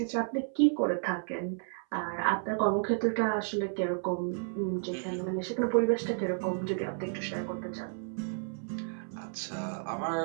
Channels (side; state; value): left; silent; 56 dB below the other